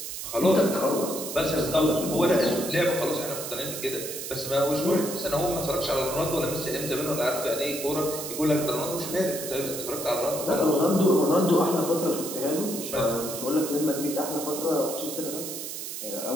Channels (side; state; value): right; noise; hiss, 7 dB below the sound